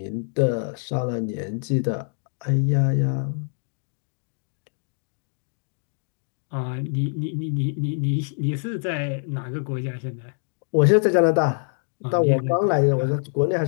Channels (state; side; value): silent; right; 62 dB below the other